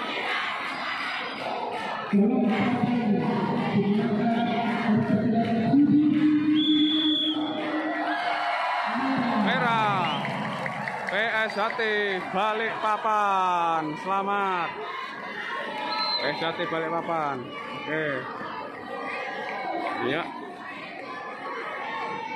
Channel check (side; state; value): both; identical; correlation 1.00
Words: Merah PSHT Balikpapan. Selamat PSHT Balikpapan. Oke. Ya.